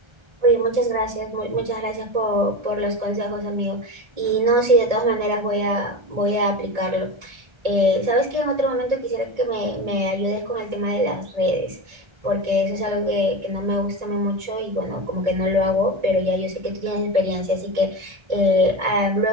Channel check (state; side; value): late; left; 1.3 ms